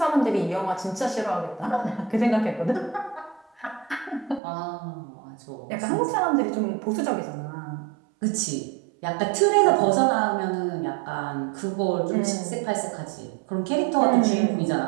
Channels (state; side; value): drops out; left; at 4.4 s